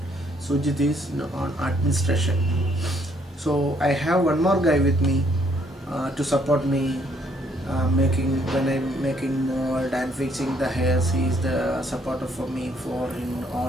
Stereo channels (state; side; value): normal; both; correlation 0.68